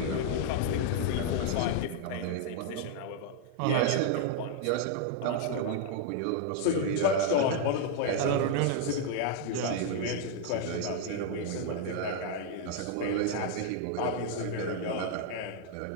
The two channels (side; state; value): both; different; correlation 0.00